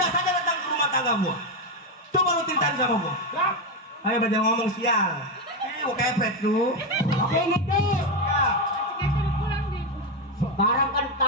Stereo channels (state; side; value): normal; both; correlation 0.07